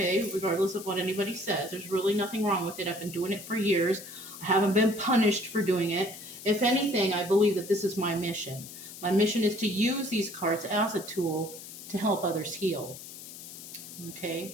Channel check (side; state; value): left; noise; hiss, 13 dB below the sound